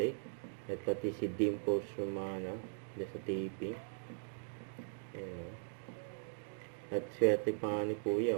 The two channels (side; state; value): left; silent; digital silence